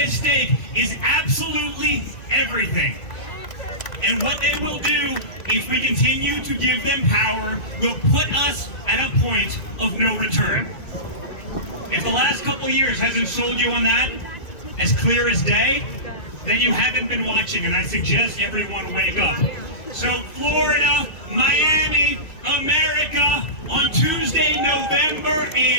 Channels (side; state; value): right; late; 2.6 ms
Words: stake is absolutely everything. And what they will do, if we continue to give them power, will put us at a point of no return. If the last couple years hasn't sold you on that, as clear as day, then you haven't been watching, and I suggest everyone wake up. So Florida, Miami, America, on Tuesday, November